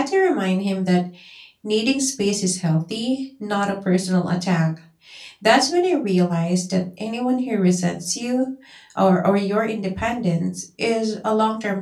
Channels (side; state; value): both; identical; correlation 1.00